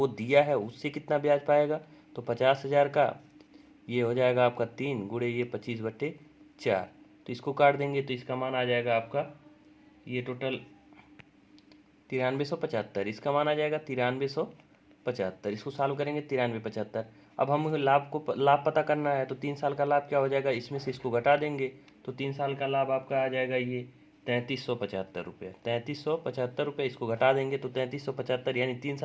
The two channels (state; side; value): identical; both; correlation 1.00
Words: दिया है उससे कितना ब्याज पाएगा। तो 50,000 का ये हो जाएगा आपका 3 गुणे ये 25/4। तो इसको काट देंगे तो इसका मान आ जाएगा आपका ये टोटल 9375। इसका मान आ जाएगा 9375। इसको सॉल्व करेंगे 9375। अब हम लाभ पता करना है। तो 3 साल का लाभ क्या हो जाएगा, इसमें से इसको घटा देंगे। तो 3 साल का लाभ आपका आ जाएगा ये 3375 रुपये। 3375 रुपये इसको घटा देंगे तो 3375, यानी 3